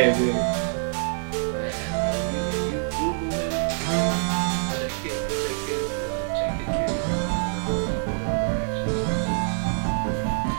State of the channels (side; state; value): left; silent; digital silence